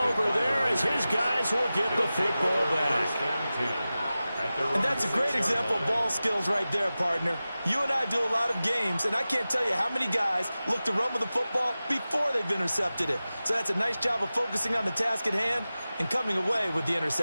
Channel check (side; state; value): both; inverted; correlation -0.95